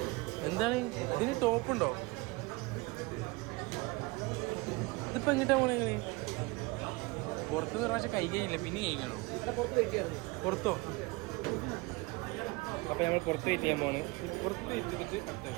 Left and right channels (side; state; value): left; quieter; 24.4 dB